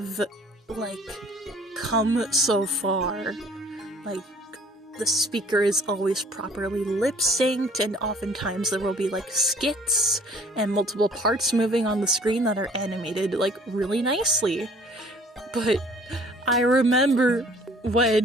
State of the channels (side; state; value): both; normal; correlation 0.54